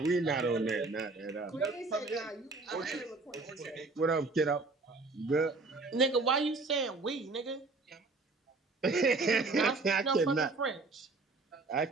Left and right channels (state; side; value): quieter; left; 3.6 dB